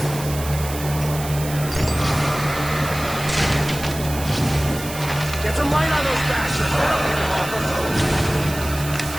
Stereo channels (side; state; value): right; noise; hiss, 11 dB below the sound